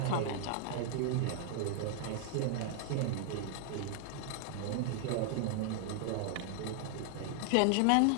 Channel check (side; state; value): both; different; correlation 0.00